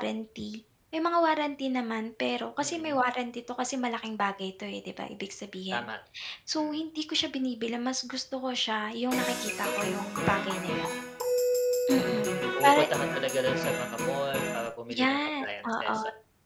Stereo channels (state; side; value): identical; both; correlation 1.00